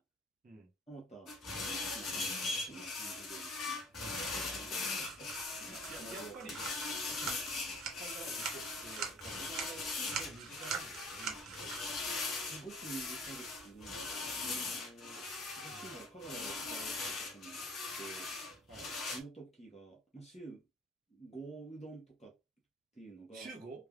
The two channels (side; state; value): both; normal; correlation 0.50